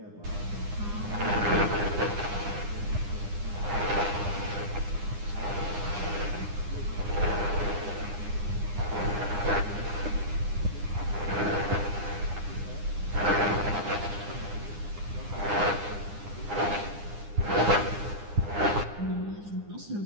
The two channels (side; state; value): left; late; 9.8 ms